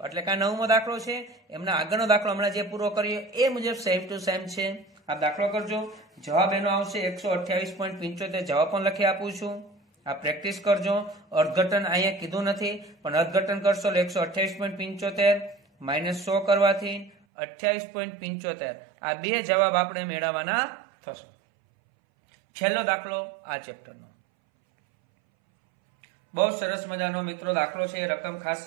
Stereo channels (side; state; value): left; drops out; at 17.1 s